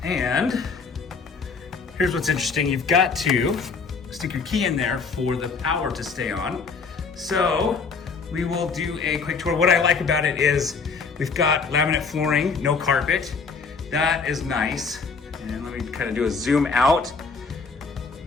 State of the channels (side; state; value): right; quieter; 4.9 dB